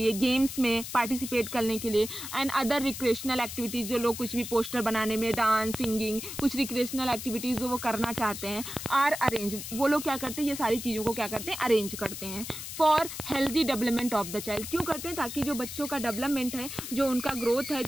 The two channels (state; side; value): noise; left; hiss, 8 dB below the sound